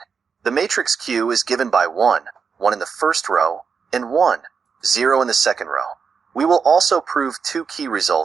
The matrix q is given by 1 in the first row, and 1, 0 in the second row. We will also prove two key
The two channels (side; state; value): left; quieter; 5.9 dB